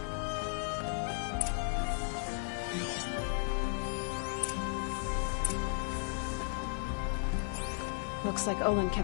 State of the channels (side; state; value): right; silent; 54 dB below the other